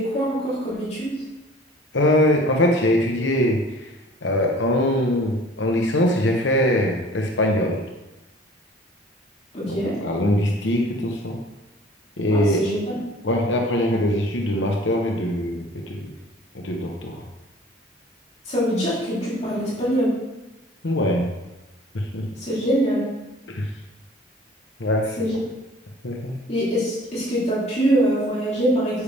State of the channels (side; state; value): both; normal; correlation 0.49